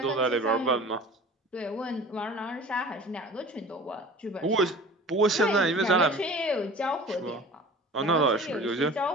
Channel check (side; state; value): both; normal; correlation 0.41